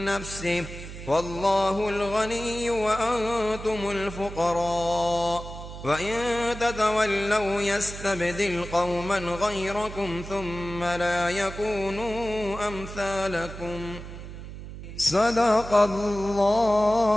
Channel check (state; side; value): noise; right; hum, 11 dB below the sound